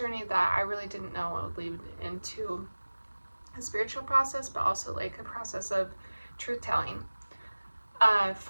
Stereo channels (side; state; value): both; inverted; correlation -1.00